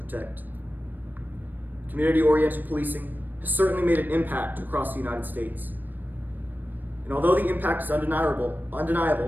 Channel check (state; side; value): late; left; 0.090 ms